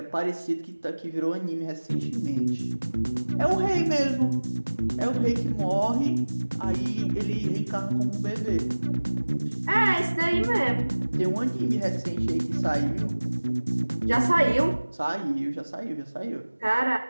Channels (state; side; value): inverted; both; correlation -1.00